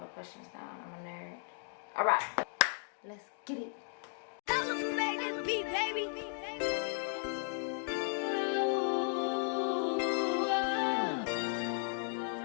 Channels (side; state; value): right; silent; 54 dB below the other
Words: questions down. I'm a nerd. Alright. Let's get it.